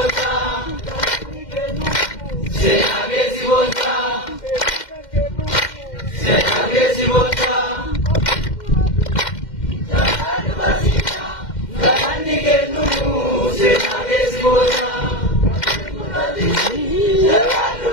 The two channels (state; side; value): late; right; 2.1 ms